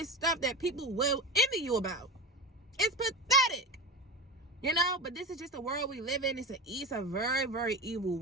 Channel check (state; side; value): normal; both; correlation 0.25